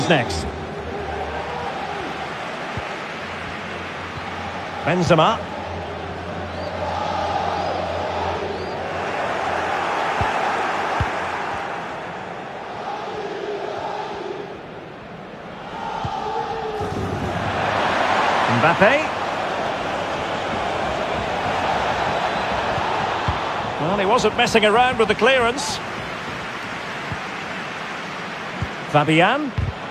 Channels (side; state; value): both; identical; correlation 1.00